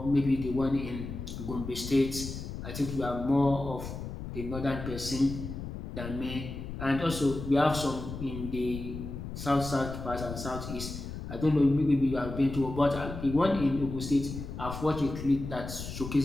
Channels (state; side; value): noise; left; rumble, 8 dB below the sound